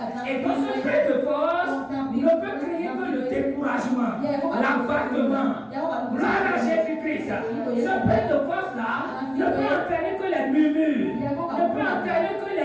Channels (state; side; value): identical; both; correlation 1.00